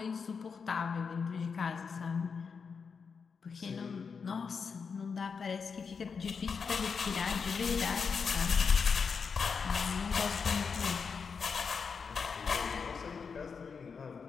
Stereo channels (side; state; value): right; quieter; 5.7 dB